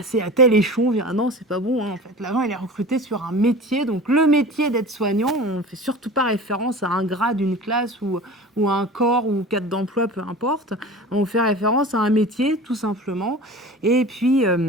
à tel échelon. Ah non, c'est pas bon, hein, en fait. L'agent, il est recruté sur un métier. Donc, le métier d'aide-soignant, on ne fait surtout pas référence à un grade, une classe ou à un corps ou cadre d'emploi, peu importe. On fait référence à un métier, tout simplement. Et puis,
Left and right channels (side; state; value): both; normal; correlation 0.37